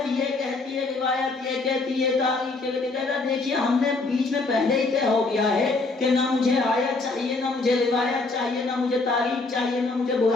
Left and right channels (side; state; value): right; quieter; 3.5 dB